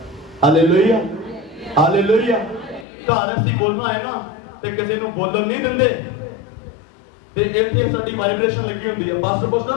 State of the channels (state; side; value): drops out; right; at 2.9 s